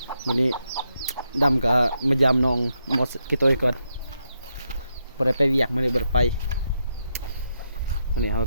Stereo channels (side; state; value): both; inverted; correlation -0.82